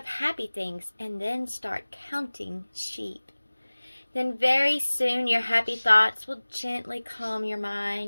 happy things and then start counting sheep. Then very soon your happy thoughts will gently calm your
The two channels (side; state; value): both; inverted; correlation -1.00